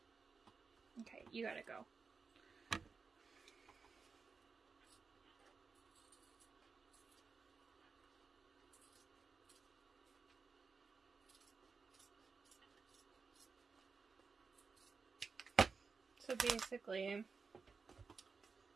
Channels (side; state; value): left; quieter; 4.8 dB